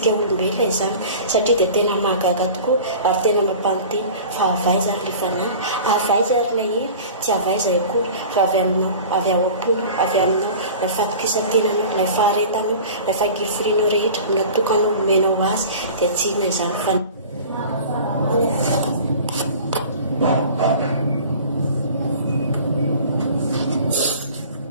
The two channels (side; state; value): both; inverted; correlation -0.40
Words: olombelona izany satria dia tena mahagaga tokoa ary tena mampanonteny fa avaiza ary ilay fanahy, avaiza ary ilay hery, tsy avaiza akory fa avy aminao, avy ao am-pony, avy aminao ilay fatokisan-tenanao, ilay faharetanao, ilay fangiforianao rehetra natokanao menao azy dia tsy inona izany fa